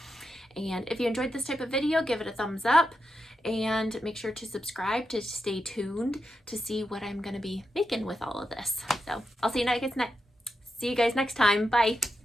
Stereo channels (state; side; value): normal; both; correlation 0.87